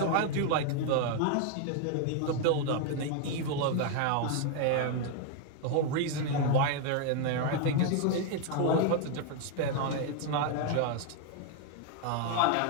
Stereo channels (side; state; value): both; different; correlation 0.00